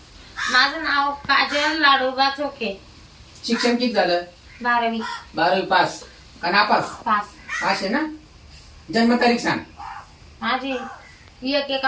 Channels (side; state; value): both; identical; correlation 1.00